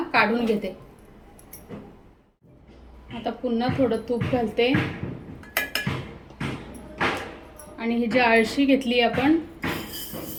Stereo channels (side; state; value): both; identical; correlation 1.00